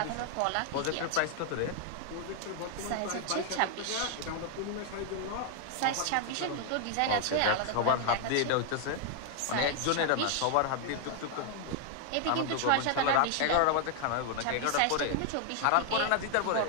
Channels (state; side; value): different; both; correlation 0.00